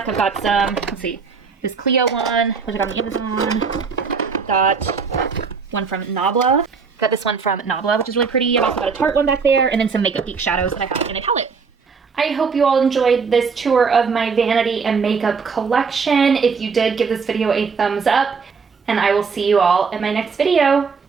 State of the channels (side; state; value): left; quieter; 5.4 dB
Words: I've got some, let's see, this Clio one, which I got on Amazon. I've got one from Nabla. Got this one from Nabla, which is really pretty. I've also got a Tarte one back there, and then some Makeup Geek shadows that I have in a palette. I hope you all enjoyed this tour of my vanity and makeup collection. If you did, give this video a thumbs up. and I will see you all in my next video.